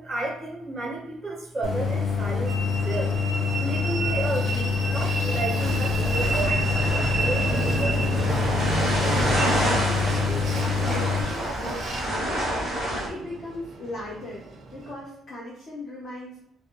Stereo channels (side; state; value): both; normal; correlation 0.72